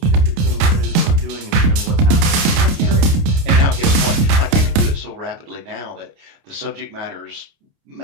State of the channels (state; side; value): late; left; 29 ms